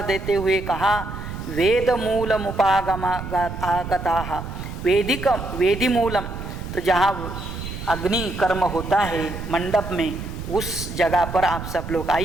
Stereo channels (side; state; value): right; noise; rumble, 8 dB below the sound